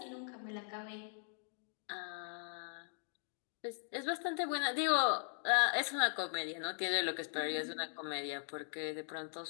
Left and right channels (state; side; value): silent; right; 51 dB below the other